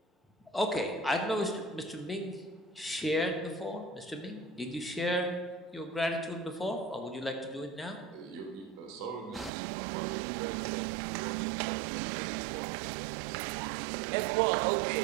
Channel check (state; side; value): drops out; left; at 9.5 s